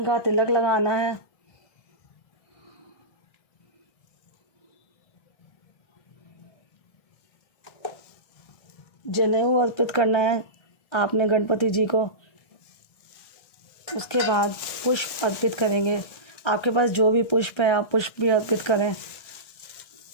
का तिलक लगाना है। जनेऊ अर्पित करना है आपने गणपति जी को। उसके बाद पुष्प अर्पित करेंगे। आपके पास जो भी पुष्प है आप पुष्प भी अर्पित करें।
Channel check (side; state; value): right; late; 1.6 ms